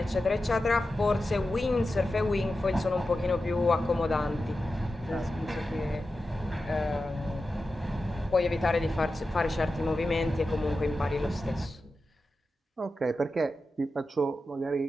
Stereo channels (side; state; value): both; normal; correlation 0.92